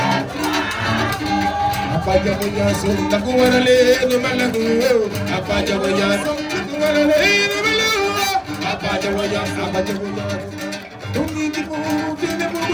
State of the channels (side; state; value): both; identical; correlation 1.00